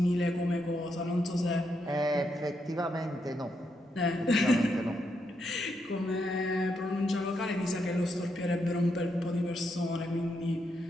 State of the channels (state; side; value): normal; both; correlation 0.80